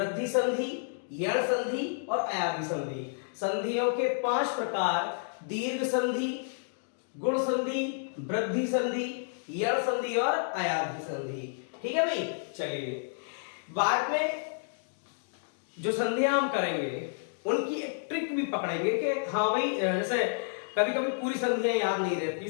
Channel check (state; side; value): silent; right; digital silence